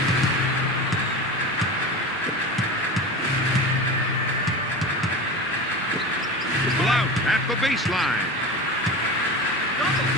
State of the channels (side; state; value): right; noise; rumble, 29 dB below the sound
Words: Blount at the baseline.